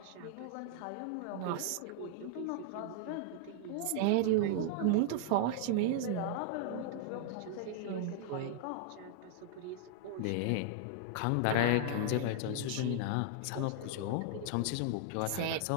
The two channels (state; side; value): different; both; correlation -0.01